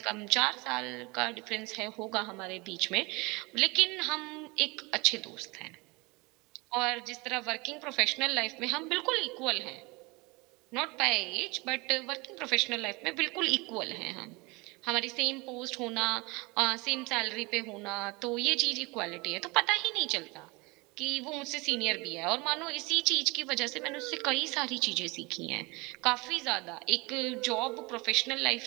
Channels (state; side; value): quieter; left; 25.8 dB